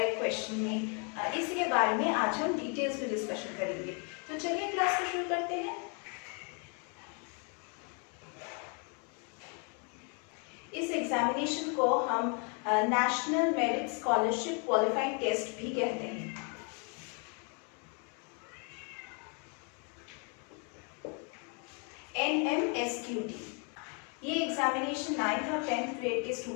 क्वेश्चन में, इसी के बारे में आज हम डिटेल्स में डिस्कशन करेंगे। तो चलिए क्लास को शुरू करते हैं। इस एग्जामिनेशन को हम national merit scholarship qualifying test भी कहते हैं। NMSQT ये एग्जामिनेशन 9th और 10th ग्रेड के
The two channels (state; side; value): quieter; right; 37.2 dB